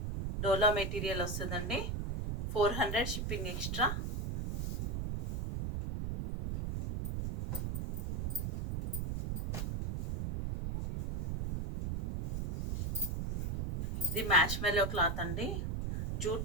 డోలా మెటీరియల్ వస్తుందండి. 400, షిప్పింగ్ ఎక్స్ట్రా. ఇది మ్యాష్ మెల్లో క్లాత్ అండి,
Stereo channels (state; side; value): noise; right; rumble, 2 dB below the sound